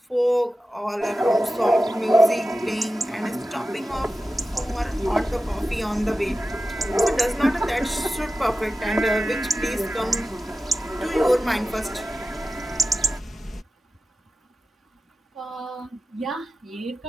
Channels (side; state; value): both; normal; correlation 0.93